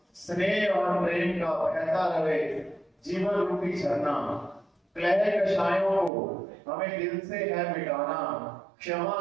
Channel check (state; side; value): drops out; left; at 6.1 s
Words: स्नेह और प्रेम का बहता रहे जीवन रूपी झरना। क्लेह कषायों को हमें दिल से है मिटाना, क्षमा